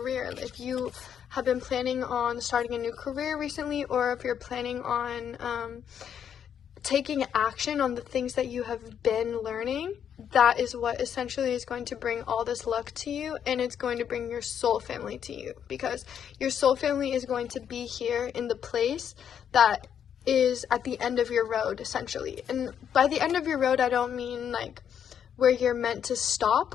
If you have been planning on starting a new career recently, or if you're planning on taking action on the things that you have been learning, that is what essentially is going to bring all this luck to you, and it's going to bring your soul family to you, because your soul family is going to be here in the place that is at the end of your road, essentially. And by the end of your road, I don't mean like where you're meant to stop,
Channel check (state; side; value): quieter; right; 8.6 dB